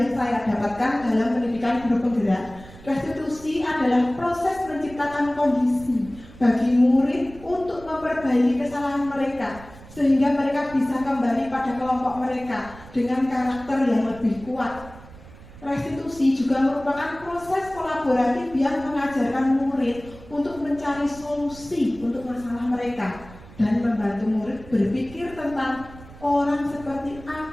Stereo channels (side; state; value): right; noise; rumble, 19 dB below the sound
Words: saya dapatkan dalam pendidikan guru penggerak. Restitusi adalah proses menciptakan kondisi bagi murid untuk memperbaiki kesalahan mereka sehingga mereka bisa kembali pada kelompok mereka dengan karakter yang lebih kuat. Restitusi juga merupakan proses kolaboratif yang mengajarkan murid untuk mencari solusi untuk masalah mereka dan membantu murid berpikir tentang orang seperti